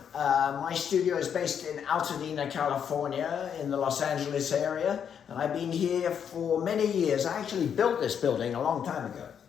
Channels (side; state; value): right; quieter; 8.0 dB